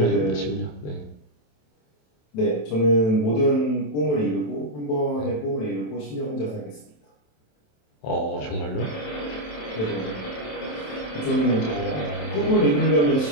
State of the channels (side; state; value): right; late; 27 ms